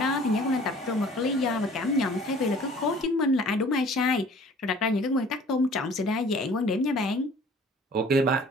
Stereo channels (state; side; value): normal; both; correlation 0.50